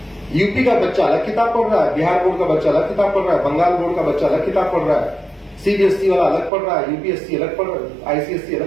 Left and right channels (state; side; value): drops out; left; at 6.5 s